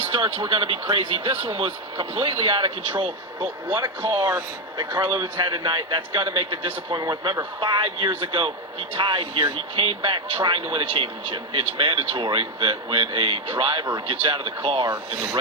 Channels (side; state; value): both; normal; correlation 0.07